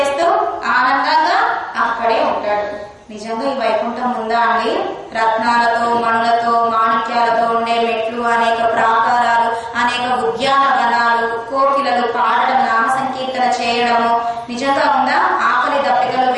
ఆనందంగా అక్కడే ఉంటాడు. నిజంగా ఈ వైకుంఠం ఉందా అండి? రత్నాలతో, మణులతో, మాణిక్యాలతో ఉండే మెట్లు, అనేక ప్రాకారాలు, అనేక ఉద్యానవనాలు, కోకిలలు పాడడం, నామ సంకీర్తన చేయడము నిజంగా ఉందా? ఆకలి దప్పికలు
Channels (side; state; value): both; identical; correlation 1.00